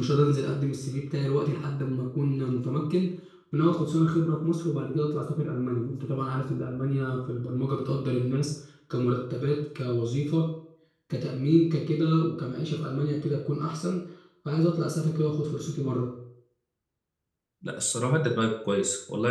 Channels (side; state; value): both; identical; correlation 1.00